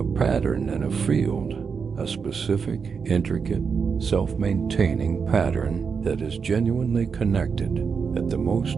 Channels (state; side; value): quieter; left; 5.8 dB